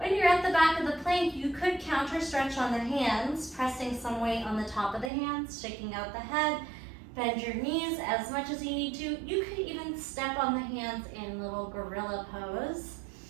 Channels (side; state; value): left; drops out; at 5.1 s